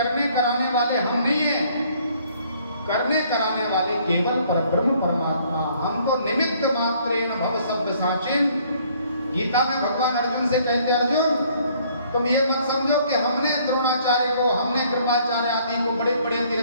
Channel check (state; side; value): inverted; both; correlation -0.61